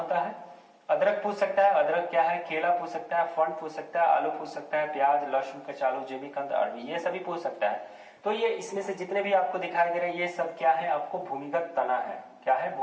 है। अदरक पूछ सकता है, अदरक क्या है, केला पूछ सकता है, फंड पूछ सकता है, आलू पूछ सकता है, प्याज, लहसुन, कचालू, जिमीकंद, अरबी, ये सभी पूछ सकता है। तो ये इसमें से जितने भी आपको दिखाई दे रहे हैं ये सब क्या है, आपको भूमिगत तना है। क्या है,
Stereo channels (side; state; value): both; identical; correlation 1.00